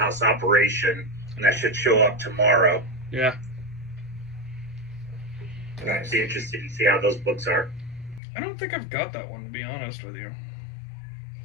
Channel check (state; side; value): drops out; right; at 8.2 s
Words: Operation, and that should show up tomorrow. Yeah. Nice. Be interested to see how those books are. I don't think I've got that one, to be honest with you.